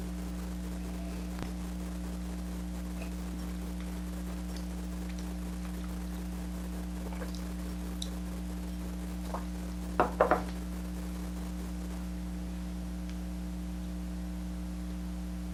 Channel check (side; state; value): both; identical; correlation 1.00